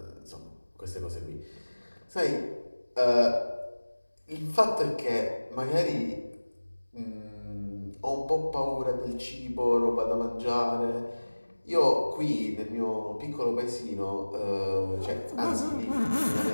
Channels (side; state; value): both; inverted; correlation -1.00